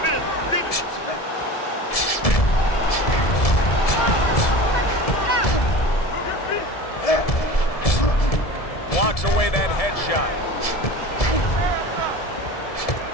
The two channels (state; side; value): late; right; 1.7 ms